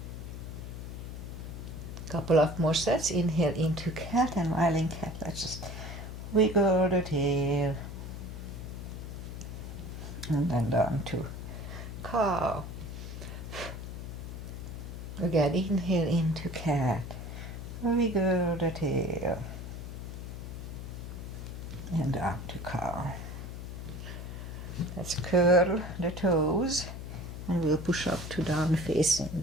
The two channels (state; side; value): noise; left; hum, 8 dB below the sound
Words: Couple of more sets. Inhale into cat, and while in cat, let's just wiggle the tail. And then down to cow. Again, inhale into cat. Wiggle the tail. And down to cow. Let's curl the toes. And we'll push up to down facing